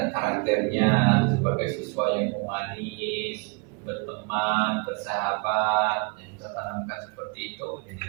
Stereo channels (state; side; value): quieter; left; 29.7 dB